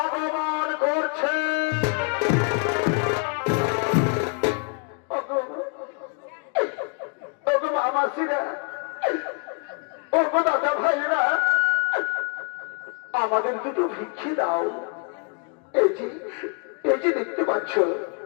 করছে। মামাসিরা, ওগো দাদা ভাইরা, আমাদের দুটো ভিক্ষে দাও। এই যে দেখতে পাচ্ছ,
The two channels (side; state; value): right; quieter; 36.9 dB